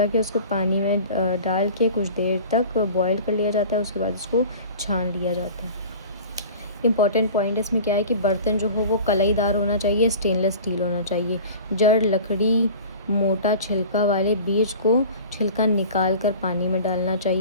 ہے، اس کو پانی میں ڈال کے کچھ دیر تک بوائل کر لیا جاتا ہے، اس کے بعد اس کو چھان لیا جاتا ہے. امپورٹنٹ پوائنٹ اس میں کیا ہے کہ برتن جو ہو وہ کلائی دار ہونا چاہیے، اسٹینلیس اسٹیل ہونا چاہیے. جڑ لکڑی موٹا چھلکا والے بیج کو چھلکا نکال کر پانی میں ڈالنا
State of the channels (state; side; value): inverted; both; correlation -0.40